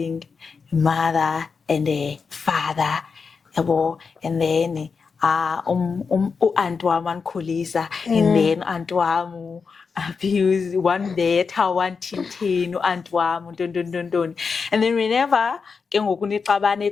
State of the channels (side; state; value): right; quieter; 5.3 dB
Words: a mother and a father, and then aunt wami angikhulisa, and then aunt wami abuse one better, one tintin, aunt wami, and then whenever